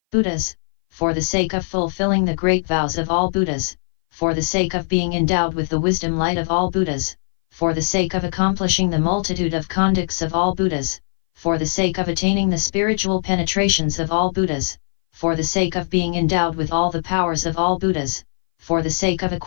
Buddhas, for the sake of fulfilling the great vows of all Buddhas, for the sake of being endowed with the wisdom light of all Buddhas, for the sake of accomplishing the multitude of conducts of all Buddhas, for the sake of attaining the spiritual penetrations of all Buddhas, for the sake of being endowed with all the powers of all Buddhas, for the sake of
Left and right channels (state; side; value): silent; right; 60 dB below the other